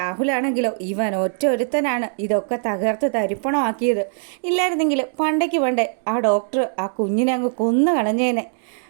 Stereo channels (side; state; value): left; silent; 63 dB below the other